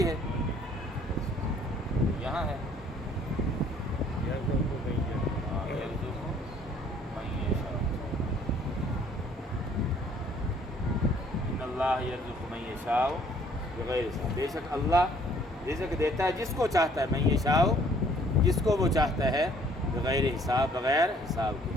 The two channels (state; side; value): normal; both; correlation 0.59